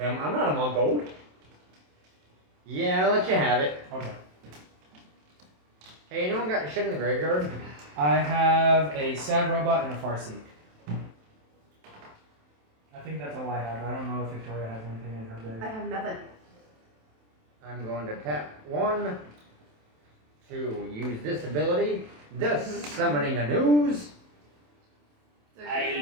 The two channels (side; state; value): left; late; 27 ms